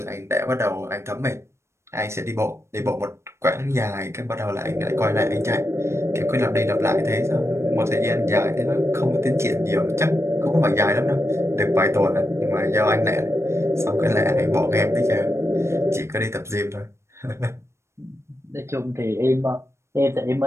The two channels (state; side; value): late; left; 0.13 ms